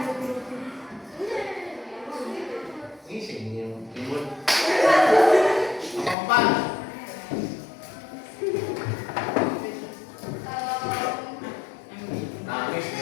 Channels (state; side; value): drops out; right; at 6.2 s